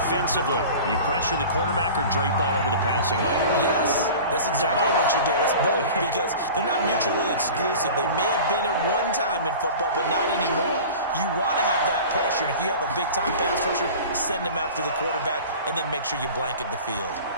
you pressure the quarterback or drape all over the passing lane? Yes, that's exactly what you do. It's both because they're not mutually exclusive. They may have been at one time in football, but not anymore. You want to have that pressure. And if you have a big-time pass rusher, send him after the quarterback and then make sure you blanket the field.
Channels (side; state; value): both; inverted; correlation -0.38